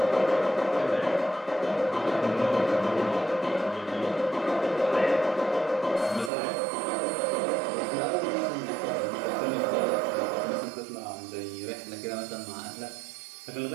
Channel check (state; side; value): drops out; left; at 6.3 s